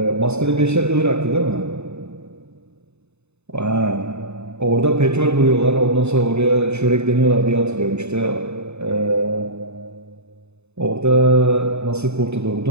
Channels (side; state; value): left; late; 0.81 ms